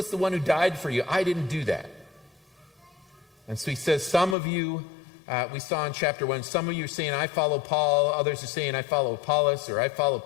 the one who died for you. I didn't do that. And so he says, some of you, we saw in chapter 1, some of you are saying, I follow Paul. Others are saying, I follow Apollos, or I follow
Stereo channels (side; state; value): right; drops out; at 4.4 s